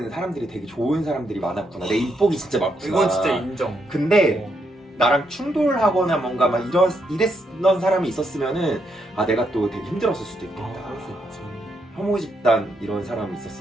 사람들이 되게 좋은 사람들이 많았구나. 내 인복이 진짜 많구나. 이건 진짜 인정. 근데 나랑 충돌하거나 뭔가 막 이랬던 사람이 있었으면은 내가 또 되게 힘들었을 수도 있겠다. 그럴 수 있지. 혐오 집단 이런 사람이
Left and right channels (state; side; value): normal; both; correlation 0.78